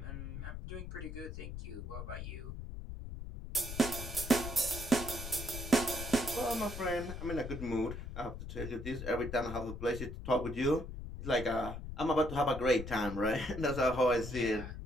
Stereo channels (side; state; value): left; noise; rumble, 8 dB below the sound